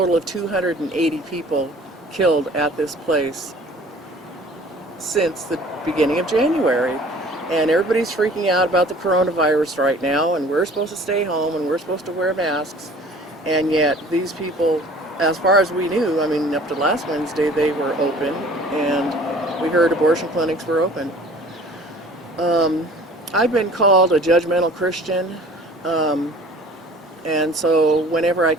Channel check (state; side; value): normal; both; correlation 0.49